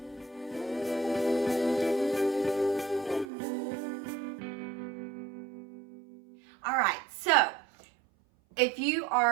All right, so if you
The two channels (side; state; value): left; drops out; at 3.2 s